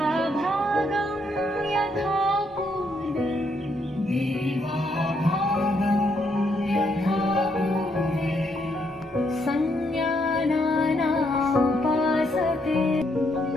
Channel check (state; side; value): normal; both; correlation 0.75